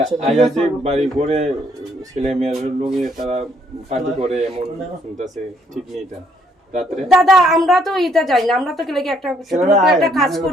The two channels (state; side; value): normal; both; correlation 0.68